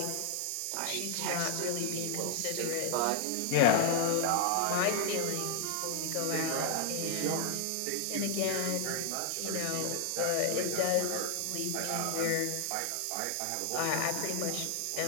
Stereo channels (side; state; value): both; different; correlation 0.00